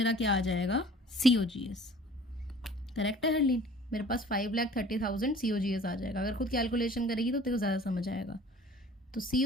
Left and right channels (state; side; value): normal; both; correlation 0.48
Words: क्या आ जाएगा, COGS। करेक्ट है हरलीन, मेरे पास 5,30,000 COGS आ जाएगा। अगर खुद कैलकुलेशन करेगी तो तेरे को ज़्यादा समझ आएगा। तो